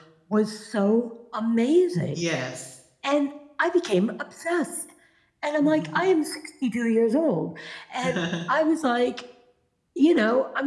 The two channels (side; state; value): both; identical; correlation 1.00